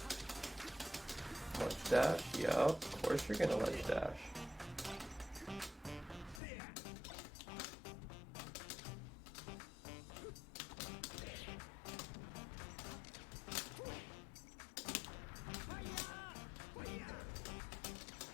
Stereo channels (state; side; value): drops out; right; at 6.4 s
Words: Ledge dash? Yup, of course you're gonna ledge dash.